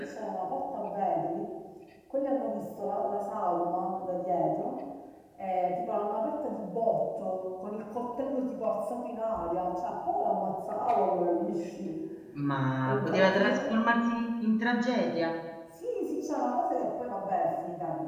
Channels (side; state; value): both; identical; correlation 1.00